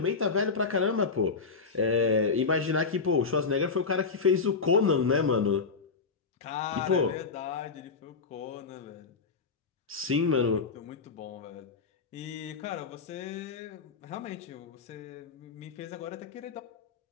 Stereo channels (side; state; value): right; quieter; 4.8 dB